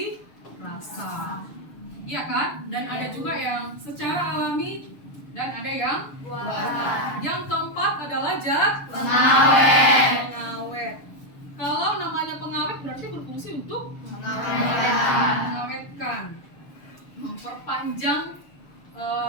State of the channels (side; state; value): right; late; 7.0 ms